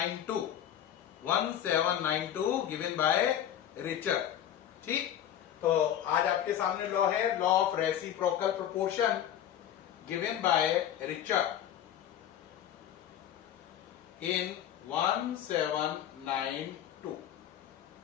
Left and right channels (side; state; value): right; quieter; 10.6 dB